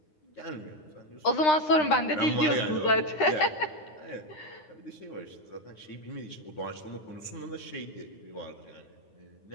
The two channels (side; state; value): right; late; 9.8 ms